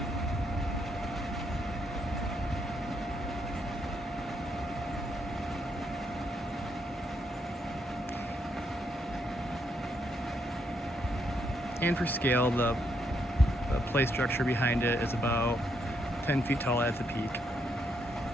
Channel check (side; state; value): both; normal; correlation 0.76